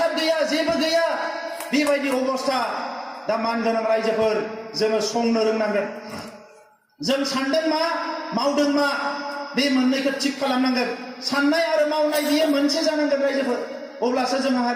गैया जेबो गैया बेबायदि अबस्था दा मानगोनां रायजोफोर जोङो संनो रोंनांगोन जों सानदों मा मावदों मा बे मोननैखौ थिक खालामनांगोन साननाय आरो मावनाय बियो मोनसे जानांगोन रायजोफोर अब्लासो जोंहा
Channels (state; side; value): identical; both; correlation 1.00